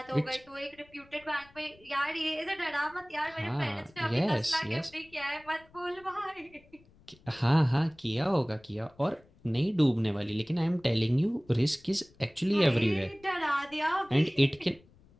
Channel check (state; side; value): noise; left; rumble, 28 dB below the sound